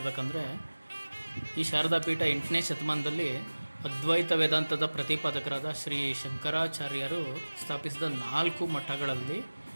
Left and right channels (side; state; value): both; inverted; correlation -1.00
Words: ಈ ಶಾರದಾ ಪೀಠ 8ನೇ ಶತಮಾನದಲ್ಲಿ ಅದ್ವೈತ ವೇದಾಂತದ ಪ್ರತಿಪಾದಕರಾದ ಶ್ರೀ ಶಂಕರಾಚಾರ್ಯರು ಸ್ಥಾಪಿಸಿದ 4 ಮಠಗಳಲ್ಲಿ